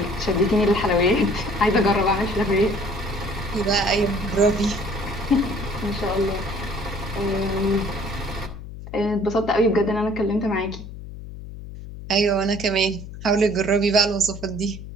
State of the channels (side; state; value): left; noise; hum, 12 dB below the sound